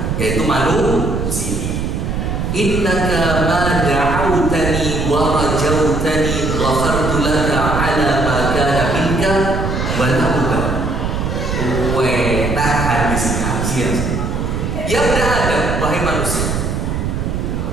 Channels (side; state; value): right; noise; rumble, 1 dB below the sound